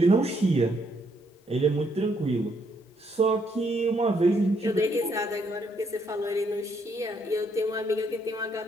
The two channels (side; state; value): both; normal; correlation 0.73